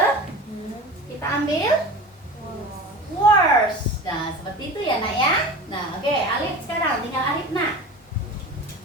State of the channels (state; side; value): normal; both; correlation 0.34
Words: Kita ambil. was Worst. Nah, seperti itu ya, Nak ya. Nah, oke, Alif sekarang tinggal Alif, Nak.